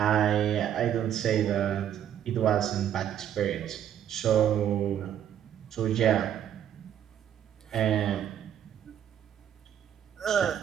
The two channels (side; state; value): left; quieter; 10.1 dB